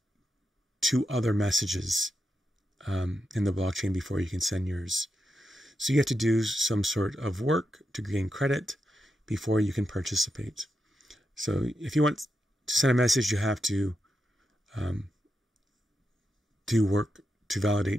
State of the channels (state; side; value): normal; both; correlation 0.86